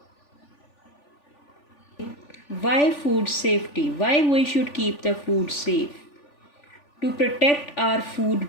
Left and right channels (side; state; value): right; late; 3.5 ms